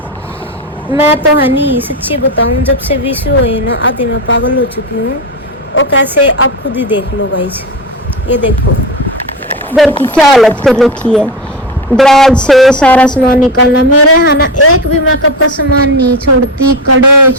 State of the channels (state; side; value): normal; both; correlation 0.19